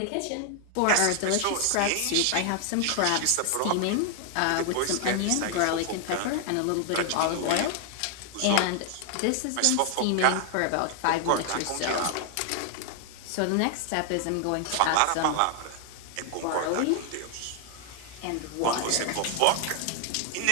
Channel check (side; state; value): both; different; correlation 0.00